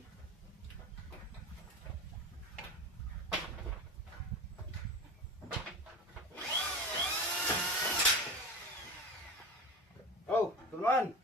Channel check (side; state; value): both; normal; correlation 0.29